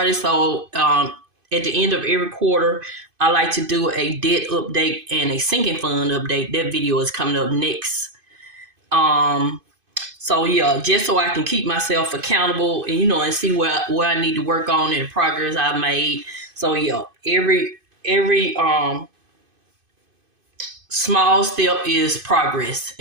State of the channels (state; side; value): late; left; 2.5 ms